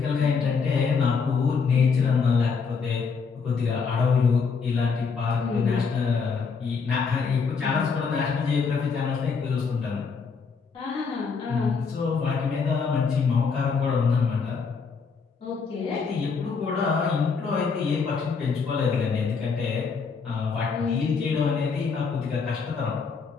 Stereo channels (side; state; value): right; quieter; 5.3 dB